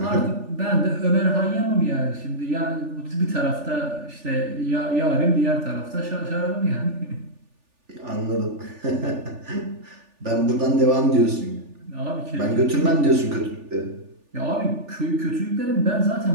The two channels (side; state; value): left; late; 3.4 ms